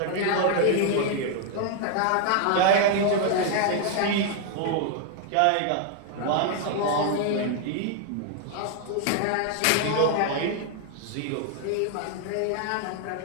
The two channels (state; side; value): different; both; correlation 0.00